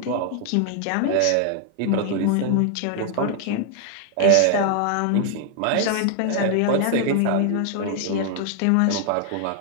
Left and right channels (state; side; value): different; both; correlation 0.00